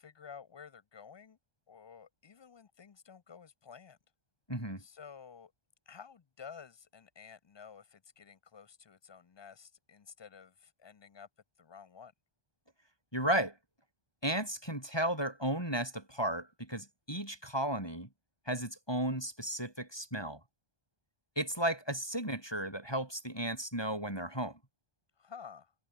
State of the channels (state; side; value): late; right; 1.2 ms